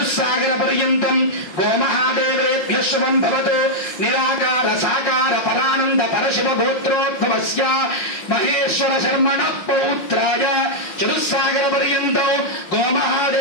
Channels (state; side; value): late; right; 5.5 ms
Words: पर्यन्तं गोमहादेवेभ्यः शुभं भवतु। निराकार साकार परानंद परशिव गोत्रोद्भवस्य महेश्वर शर्मणः पौत्राय चतुस्सागर पर्यन्तं